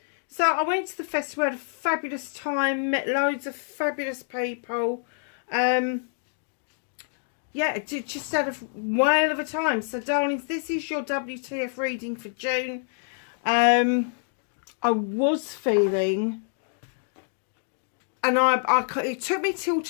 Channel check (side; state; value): right; silent; digital silence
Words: so I went to the festival, had a fabulous time, met loads of fabulous people. Yeah, just had a whale of a time. So darlings, this is your WTF reading for June. I was feeling... And it took me till